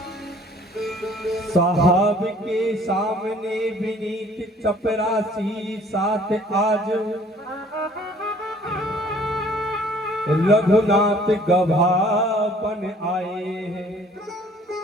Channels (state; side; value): normal; both; correlation 0.56